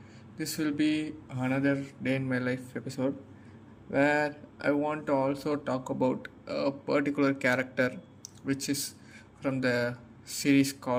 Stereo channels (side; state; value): both; identical; correlation 1.00